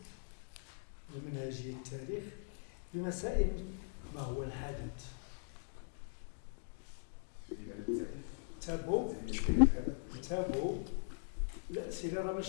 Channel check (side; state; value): right; silent; digital silence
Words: بمنهجية التاريخ بمسائل ما هو الحدث. تابو الأسئلة راه